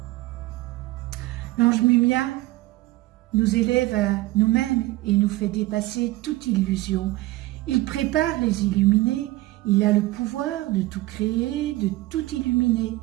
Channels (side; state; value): left; quieter; 18.6 dB